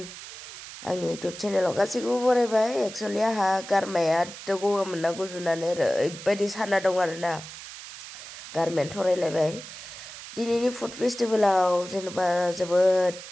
आंनि इउटुब चेनेलाव गासैखौबो बरायबाय एक्चुअली आंहा गारमाया गगा मोनना गुजुनानै ओरैबायदि साना दं आरोना गारमायानो थरायलायबाय दिनैनि फुड फेस्टिभेलाव जेनेबा जोबोद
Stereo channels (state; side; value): noise; right; hiss, 13 dB below the sound